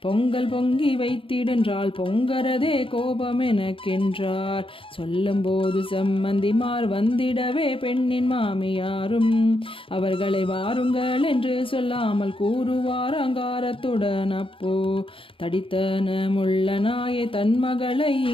பொங்கல் பொங்கி வைத்திடென்றால் பொங்கரதே கோபம் எனக்கென்றார். சொல்லும் போது செம்மந்திமார் வந்திடவே பெண்ணின் மாமியாரும் அவர்களை வாருங்கள் என்று சொல்லாமல் கூறுவார். அங்காரத்துடன் அப்போ தடித்தனமுள்ள நாயே தன் மகளை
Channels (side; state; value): right; late; 0.26 ms